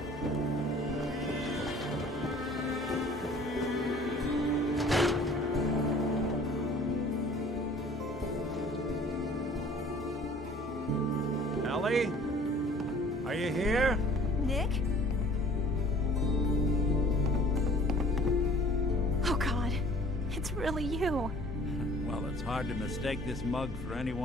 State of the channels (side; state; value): both; normal; correlation 0.51